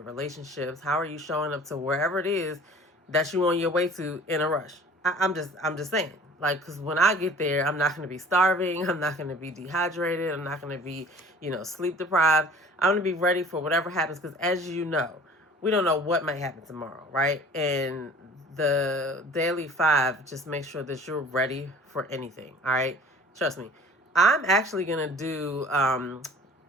relationships? How are you showing up to wherever it is that you're on your way to in a rush? I'm just saying. Like, because when I get there, I'm not going to be starving. I'm not going to be dehydrated. I'm not going to be, sleep deprived. I'm going to be ready for whatever happens, because as you know, we don't know what might happen tomorrow, right? And the Daily Five just make sure that you're ready for anything, all right? Trust me. I'm actually going to do, I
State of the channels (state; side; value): normal; both; correlation 0.48